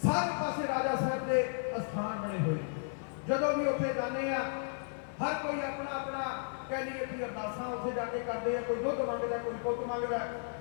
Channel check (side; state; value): right; silent; 55 dB below the other